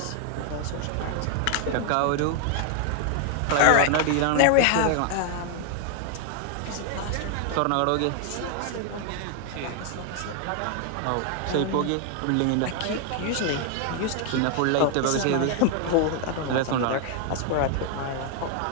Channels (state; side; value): different; both; correlation 0.00